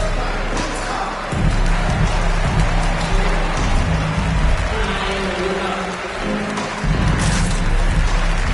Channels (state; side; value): identical; both; correlation 1.00